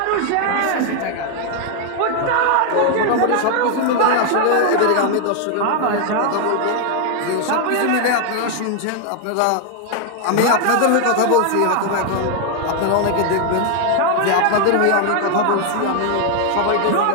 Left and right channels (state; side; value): different; both; correlation 0.00